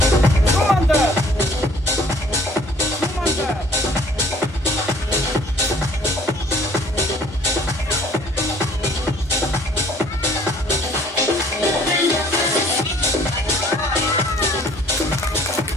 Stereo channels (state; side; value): normal; both; correlation 0.56